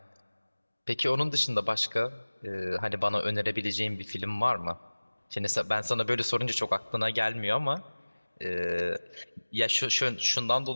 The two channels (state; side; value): inverted; both; correlation -1.00